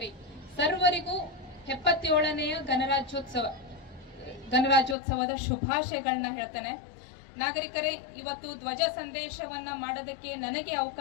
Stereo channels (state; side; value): drops out; right; at 5.0 s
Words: ಸರ್ವರಿಗೂ 77ನೆಯ ಗಣರಾಜ್ಯೋತ್ಸವದ ಶುಭಾಶಯಗಳನ್ನ ಹೇಳ್ತೇನೆ. ನಾಗರಿಕರೇ, ಇವತ್ತು ಧ್ವಜ ಸಂದೇಶವನ್ನ ಮಾಡೋದಕ್ಕೆ ನನಗೆ